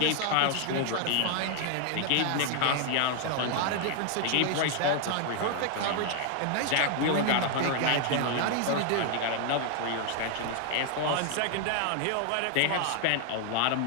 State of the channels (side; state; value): both; different; correlation 0.00